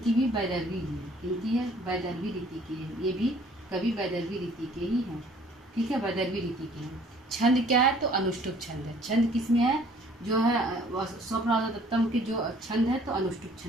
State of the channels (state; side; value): normal; both; correlation 0.56